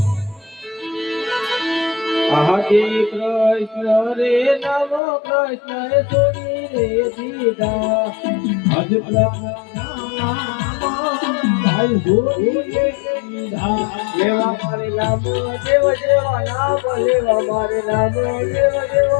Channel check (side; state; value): right; drops out; at 5.0 s